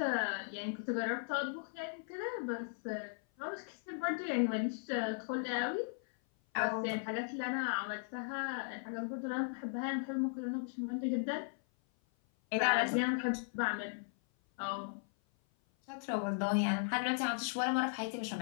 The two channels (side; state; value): right; silent; 53 dB below the other